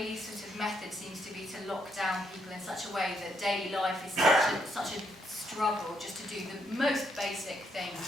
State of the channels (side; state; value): both; normal; correlation 0.75